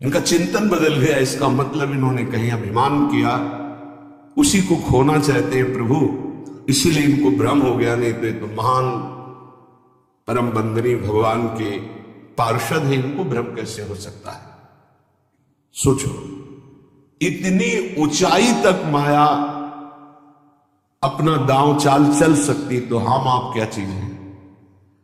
इनका चिंतन बदल गया। इसका मतलब इन्होंने कहीं अभिमान किया, उसी को खोना चाहते हैं प्रभु, इसीलिए इनको भ्रम हो गया। नहीं तो ये तो महान परम बंदनी भगवान के पार्षद है, इनको भ्रम कैसे हो सकता है? सोचो, इतनी ऊंचाई तक माया अपना दांव चाल चल सकती, तो हम आप क्या चीज हैं?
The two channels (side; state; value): both; identical; correlation 1.00